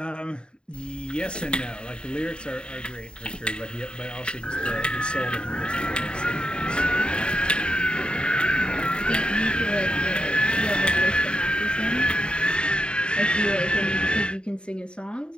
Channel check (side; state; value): right; late; 0.052 ms